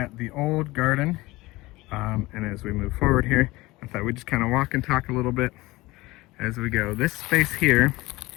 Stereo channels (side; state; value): right; quieter; 20.4 dB